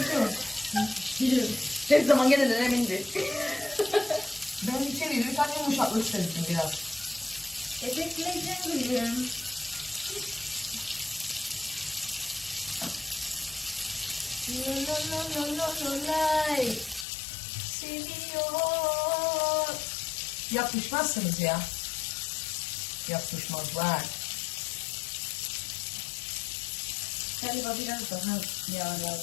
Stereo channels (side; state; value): right; drops out; at 17.1 s